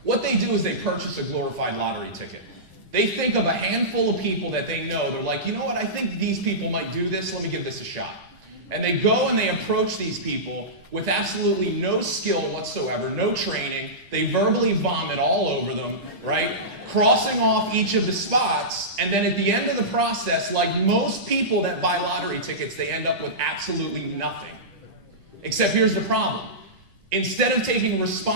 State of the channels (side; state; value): left; late; 10 ms